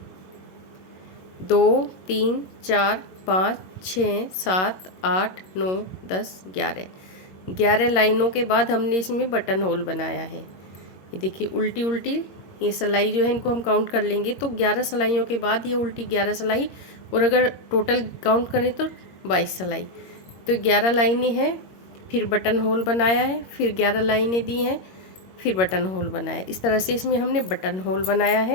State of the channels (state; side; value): late; right; 22 ms